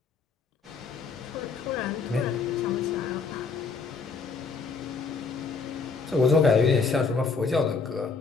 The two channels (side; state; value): right; quieter; 4.8 dB